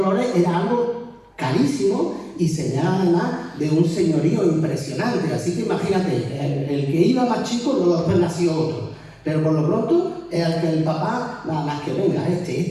era algo carísimo y señala además de un señorío impresionante. Así que imagínate, el que iba más chico, luego después nació otro. Pero por lo pronto, el que el papá, nada más que venga,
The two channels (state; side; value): identical; both; correlation 1.00